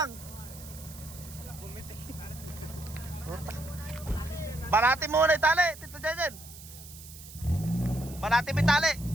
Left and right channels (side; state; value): right; noise; hiss, 16 dB below the sound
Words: Banati muna yung tali, Tito Jejen. Banati mo yung tali.